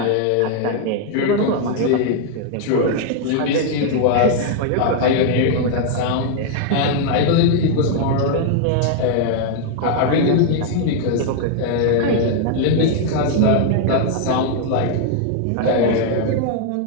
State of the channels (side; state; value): both; different; correlation 0.00